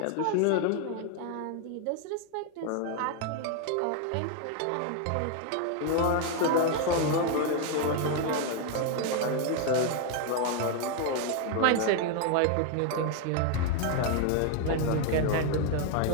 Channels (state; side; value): different; both; correlation 0.01